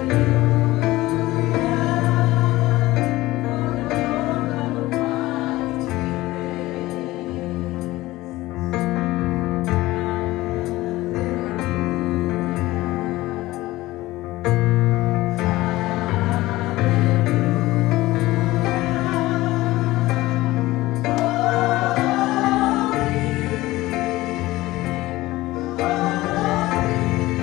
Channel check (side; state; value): right; quieter; 18.1 dB